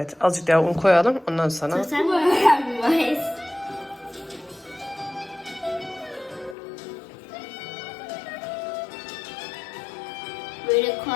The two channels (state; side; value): drops out; right; at 6.6 s